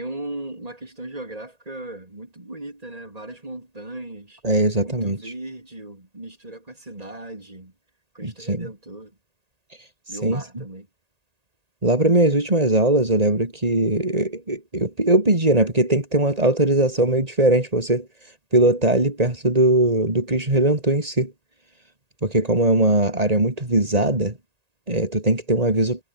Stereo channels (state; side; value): late; left; 1.8 ms